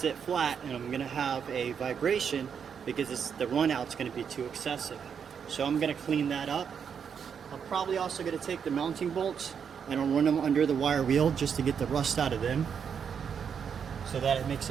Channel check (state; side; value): quieter; left; 7.2 dB